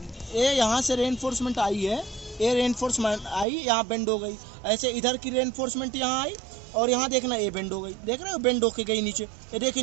यहाँ से रेनफोर्समेंट आई है, ये रेनफोर्समेंट आई यहाँ बेंड हो गई। ऐसे इधर की रेनफोर्समेंट यहाँ आई और यहाँ देखना ये बेंड हो गई, देख रहे हो बेंड होके गई नीचे। ये देखिए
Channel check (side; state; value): left; drops out; at 3.5 s